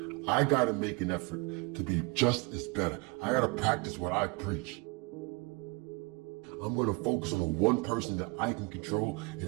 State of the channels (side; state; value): left; quieter; 27.6 dB